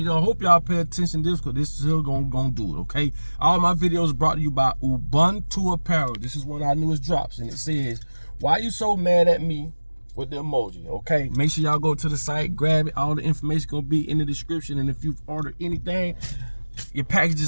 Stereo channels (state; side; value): inverted; both; correlation -1.00